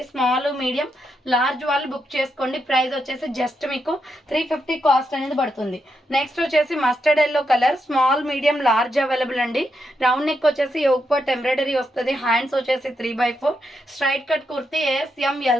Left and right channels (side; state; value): both; normal; correlation 0.82